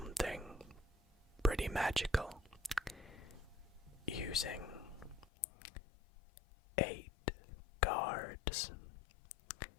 pretty magical using 8 cards.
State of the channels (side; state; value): right; drops out; at 5.2 s